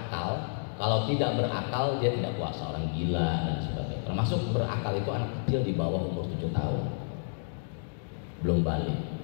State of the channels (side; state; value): right; silent; digital silence